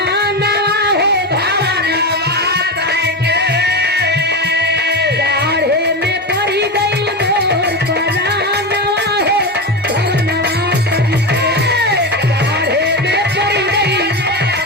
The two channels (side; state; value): both; normal; correlation 0.18